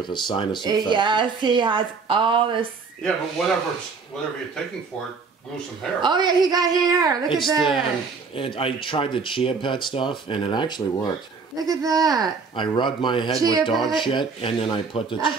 a sinus infection. Yes, he has all this. Yeah, but whatever you're taking for it, grew some hair. Oh yeah, he got hair. Look at that. I tried the Chia Pet stuff, and it actually worked. Look at that. I rubbed my head Chia with dog Pet? shit, and then I put the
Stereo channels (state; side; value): quieter; left; 4.9 dB